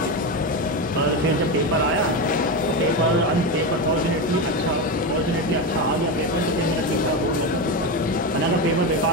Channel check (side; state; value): both; normal; correlation 0.15